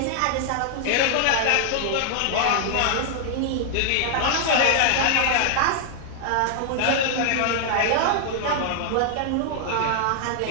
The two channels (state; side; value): different; both; correlation 0.00